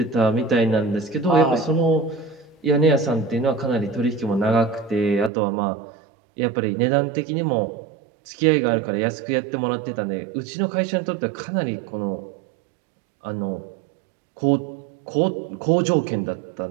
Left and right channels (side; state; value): left; drops out; at 5.3 s